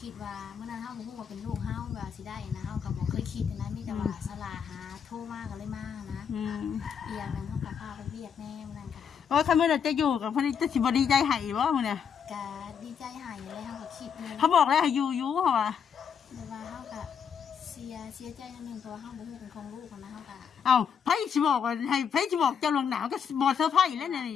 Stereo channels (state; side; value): quieter; right; 7.3 dB